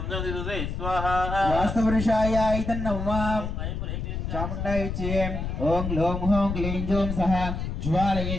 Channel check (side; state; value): left; noise; rumble, 4 dB below the sound